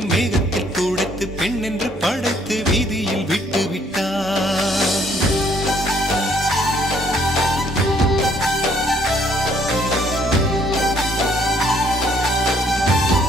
மேகத்தில் துடைத்து பெண் என்று படைத்து வீதியில் விட்டு விட்டான்.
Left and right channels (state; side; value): normal; both; correlation 0.65